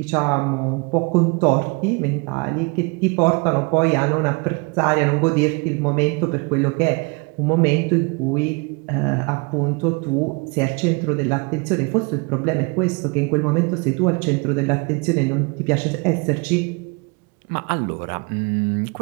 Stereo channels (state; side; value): quieter; left; 30.2 dB